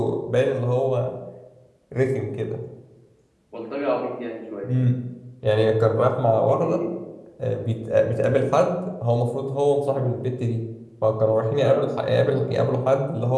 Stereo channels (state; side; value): identical; both; correlation 1.00